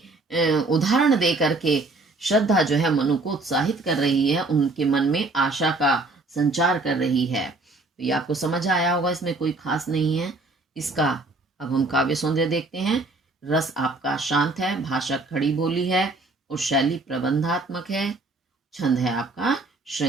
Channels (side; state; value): left; quieter; 3.1 dB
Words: उदाहरण दे करके श्रद्धा जो है मनु को उत्साहित कर रही है, उनके मन में आशा का संचार कर रही है। तो ये आपको समझ आया होगा, इसमें कोई खास नहीं है इसका। अब हम काव्य सौंदर्य देखते हैं। रस आपका शांत है, भाषा खड़ी बोली है और शैली प्रबंधात्मक है। छंद है आपका